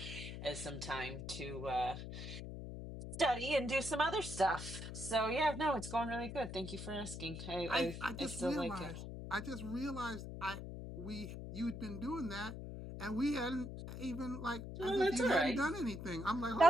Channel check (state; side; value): noise; left; hum, 8 dB below the sound